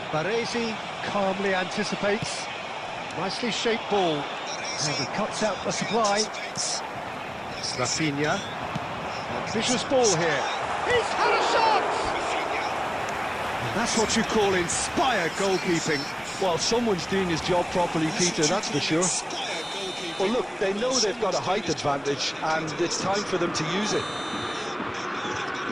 Baresi calmly anticipates. Nicely shaped ball. And he cuts out the supply. Rafinha. Ambitious ball here. He's had a shot! And that's what you call inspired goalkeeping. Well, someone's doing his job properly, Peter, that's for sure. Well, look, they know they've got a height advantage, and it's time for them to use it.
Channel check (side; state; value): both; identical; correlation 1.00